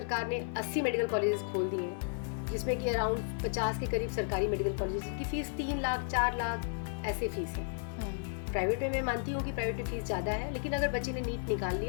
ने 80 मेडिकल कॉलेजेस खोल दिए हैं, जिसमें कि अराउंड 50 के करीब सरकारी मेडिकल कॉलेजेस की फीस 3 लाख 4 लाख ऐसे फीस है। प्राइवेट में मैं मानती हूँ कि प्राइवेट में फीस ज़्यादा है, लेकिन अगर बच्चे ने नीट निकाल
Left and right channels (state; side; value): silent; right; digital silence